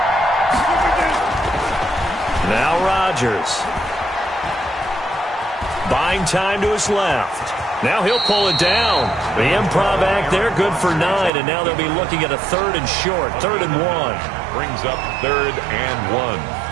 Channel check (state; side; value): drops out; left; at 11.3 s